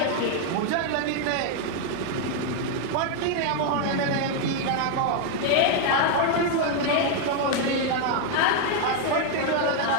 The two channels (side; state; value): both; different; correlation 0.00